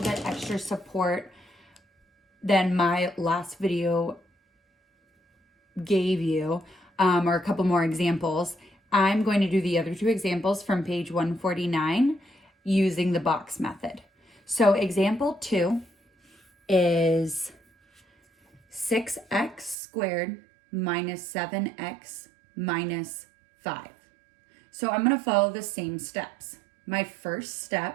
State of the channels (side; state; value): left; drops out; at 19.8 s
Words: bit extra support than my last video gave you, or a couple more examples, I'm going to do the other two examples from page 149 using the box method. So example 2 is 6x squared minus 7x minus 5. So I'm going to follow the same steps. My first